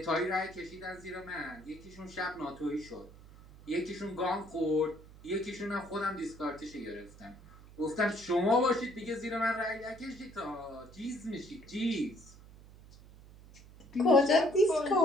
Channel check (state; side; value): noise; right; hum, 20 dB below the sound